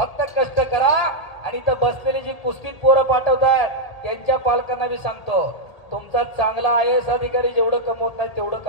कष्ट करा. आणि इथं बसलेली जी कुस्तीत पोरं पाठवतात त्यांच्या पालकांना मी सांगतो, तुमचा चांगला IAS अधिकारी जेवढं कमवत नाही तेवढं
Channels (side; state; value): right; late; 1.9 ms